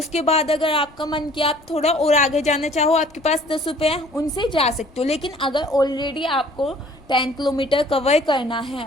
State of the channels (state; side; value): noise; left; rumble, 28 dB below the sound